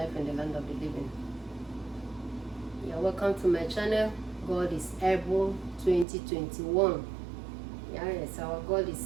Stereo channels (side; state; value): left; drops out; at 6.1 s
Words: in the land of the living. Yeah, welcome to my channel, God is able 2021. Yes, our God